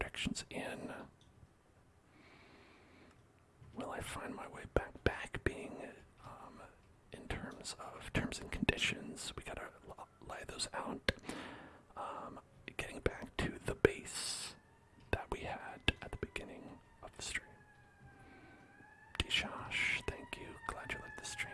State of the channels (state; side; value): identical; both; correlation 1.00